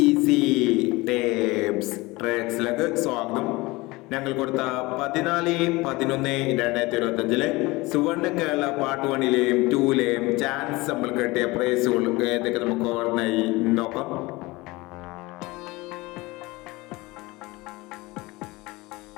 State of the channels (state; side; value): quieter; right; 22.1 dB